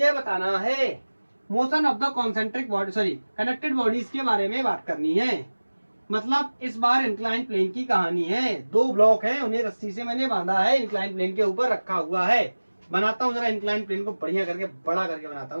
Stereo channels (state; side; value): inverted; both; correlation -1.00